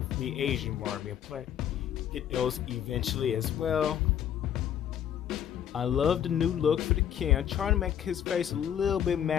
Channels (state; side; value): quieter; right; 9.8 dB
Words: the Asian Barbie. I plan to get those eventually as well. I love the new look for the Ken. I'm trying to make his face a little bit